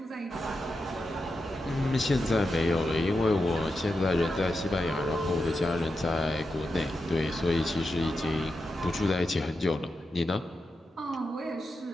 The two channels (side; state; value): both; normal; correlation 0.88